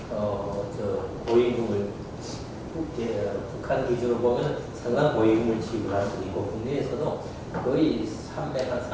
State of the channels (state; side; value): identical; both; correlation 1.00